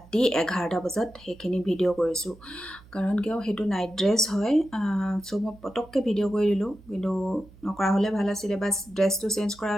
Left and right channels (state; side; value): noise; right; hum, 23 dB below the sound